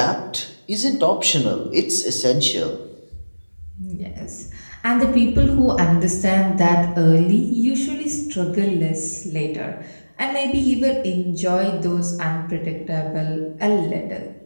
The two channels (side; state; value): both; inverted; correlation -1.00